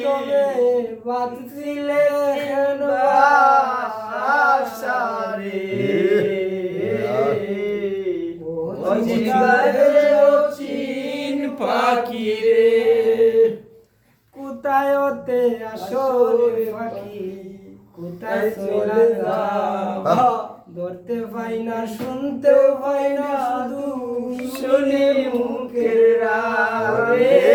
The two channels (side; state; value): both; identical; correlation 1.00